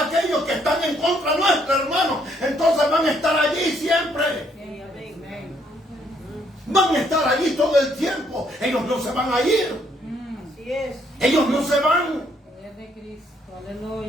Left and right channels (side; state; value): both; normal; correlation 0.69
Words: que están en contra nuestro, hermano, entonces van a estar allí siempre. Van a estar allí todo el tiempo. Ellos no se van a ir. Así es. Ellos no se van. De Cristo,